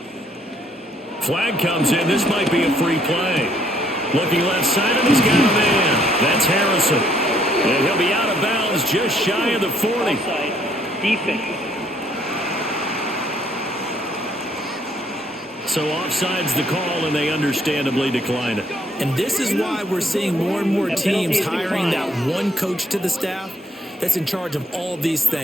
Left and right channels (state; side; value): normal; both; correlation 0.67